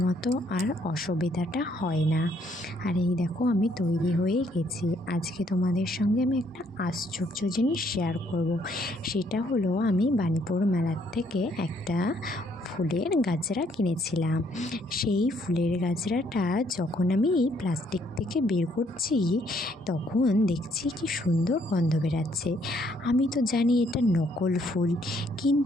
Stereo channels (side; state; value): both; normal; correlation 0.68